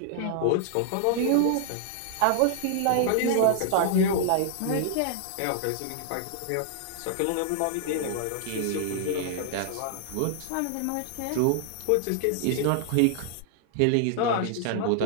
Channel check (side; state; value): both; different; correlation 0.00